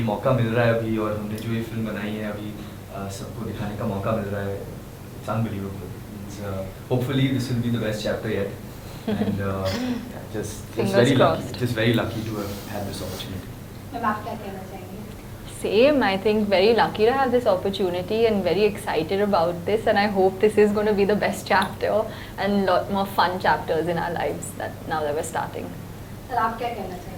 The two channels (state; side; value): identical; both; correlation 1.00